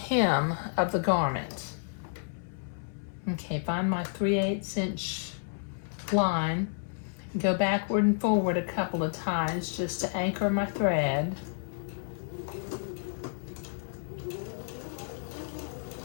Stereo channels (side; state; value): right; silent; 57 dB below the other